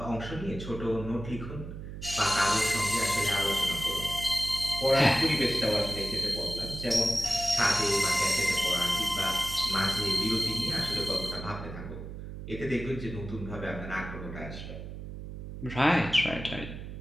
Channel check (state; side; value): noise; right; hum, 10 dB below the sound